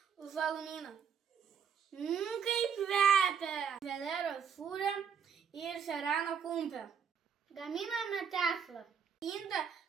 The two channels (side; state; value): left; quieter; 7.1 dB